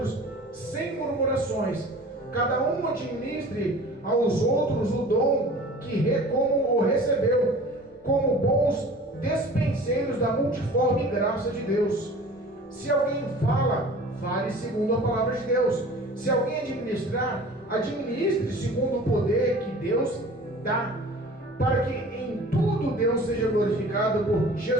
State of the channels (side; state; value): both; normal; correlation 0.43